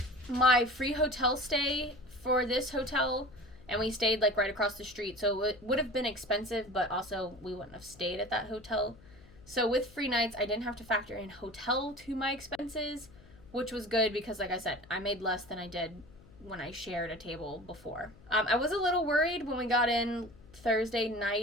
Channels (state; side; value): noise; left; hum, 24 dB below the sound